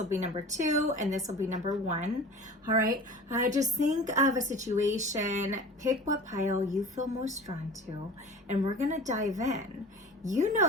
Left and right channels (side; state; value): both; normal; correlation 0.39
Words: be number 2, and this will be number 1. All right, just think of a situation, pick what pile you feel most drawn to, and we're gonna dive in. You